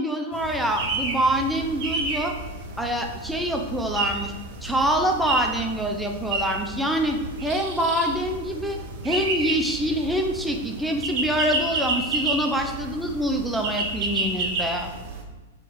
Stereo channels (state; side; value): normal; both; correlation 0.35